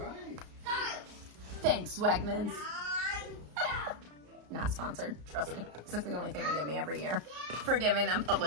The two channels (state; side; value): late; left; 34 ms